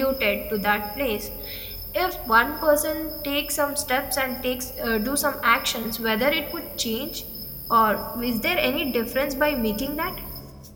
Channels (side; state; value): both; identical; correlation 1.00